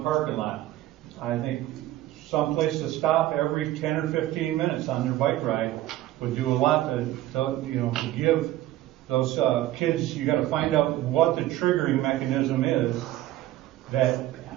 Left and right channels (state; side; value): quieter; left; 14.9 dB